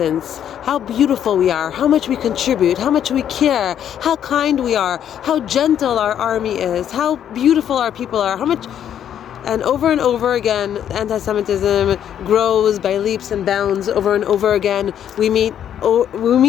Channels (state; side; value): quieter; right; 9.7 dB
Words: how beautiful we are, how much we contribute, how much we care, how kind we are, how gentle our army is, how beautiful our people are, how much. And over again, anti-Semitism grows by leaps and bounds. Over and over again, we meet